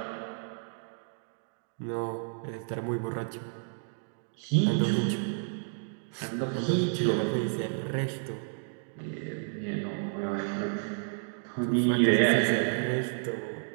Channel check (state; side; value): silent; left; digital silence